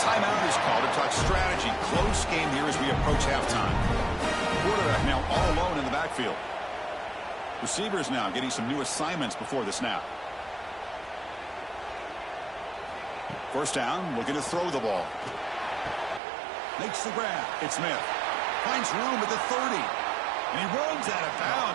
is called to talk strategy. Close game here as we approach halftime. Quarterback now all alone in the backfield. Receivers now getting some new assignments before the snap. First down, looking to throw the ball. Makes the grab. It's Smith. Finds room at the 30. And he runs out of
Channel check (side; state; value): left; drops out; at 16.2 s